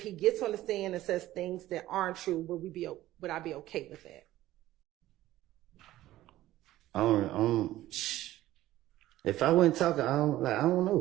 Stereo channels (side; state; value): left; quieter; 15.1 dB